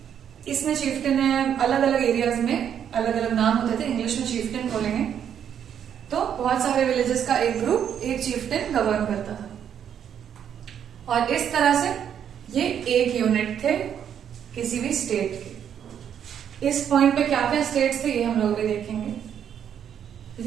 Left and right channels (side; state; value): left; quieter; 8.9 dB